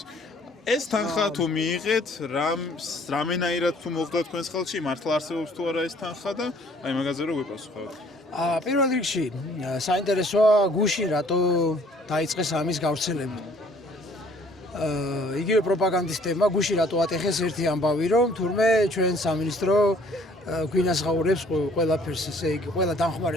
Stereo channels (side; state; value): both; normal; correlation 0.58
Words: ეს თანხა თუ მიიღეთ, რამენაირად თუ მოხდა თქვენს ხელში, მართლა არსებობს თუ არა ეს თანხა და აი მაგაზე რო გვიპასუხოთ. პირველ რიგში საინტერესოა გუშინ რატო დაიწყეს ამის გავრცელება. იგივე პროპაგანდისტებმა გუშინ რატო ატეხეს ერთი ამბავი, რომ თურმე ჩვენ სამინისტრო გვინასღაურებს ყველაფერს, ესე იგი, ყველა